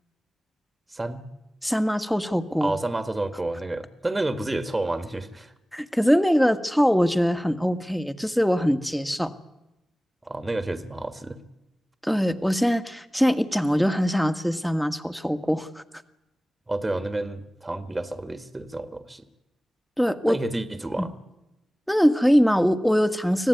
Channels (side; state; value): both; normal; correlation 0.98